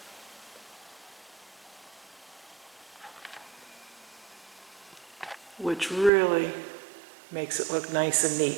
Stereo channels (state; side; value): drops out; left; at 6.1 s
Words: Which really makes it look nice and neat.